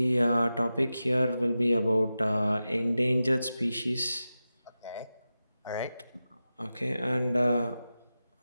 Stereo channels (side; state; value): both; inverted; correlation -0.93